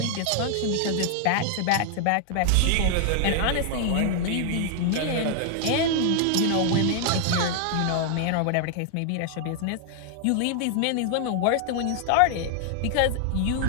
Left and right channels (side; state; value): both; different; correlation 0.00